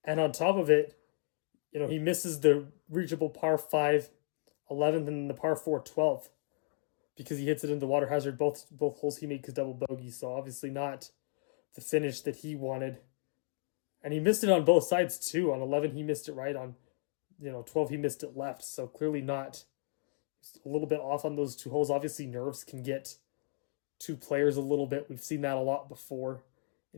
And on top of it, he misses the reachable par 5 11th and the par 4 12th because he hits it into water hazard. Both holes he made his double bogey, so obviously not the finish that he wanted. And he missed it on both sides too. On 11, he missed it right. On 12, he missed it left. So clearly not a little bit off on those two holes. Obviously, nerves can get two players a little bit. We've seen that a lot before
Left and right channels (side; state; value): right; silent; digital silence